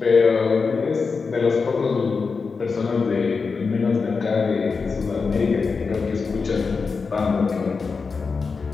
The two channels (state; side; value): quieter; right; 4.8 dB